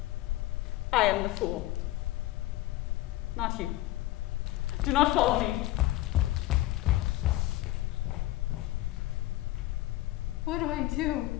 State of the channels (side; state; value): right; quieter; 17.0 dB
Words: I am the fool. Not you. Do not follow me. What do I do?